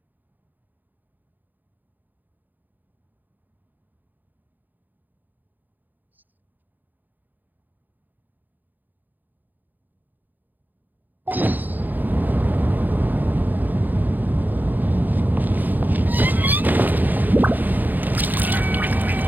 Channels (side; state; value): left; late; 0.085 ms